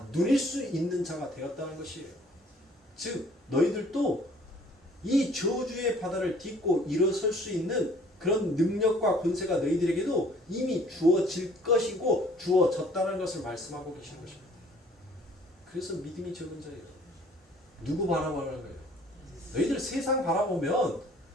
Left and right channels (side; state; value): both; normal; correlation 0.55